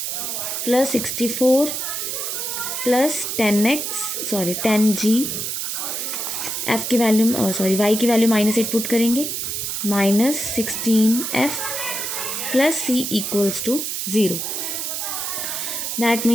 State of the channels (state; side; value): noise; right; hiss, 3 dB below the sound